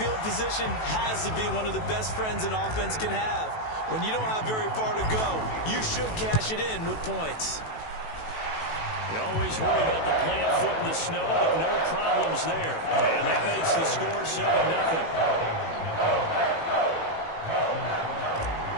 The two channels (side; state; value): right; late; 18 ms